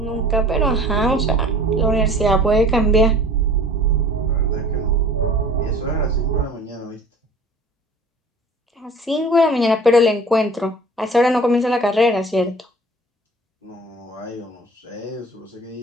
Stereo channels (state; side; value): normal; both; correlation 0.47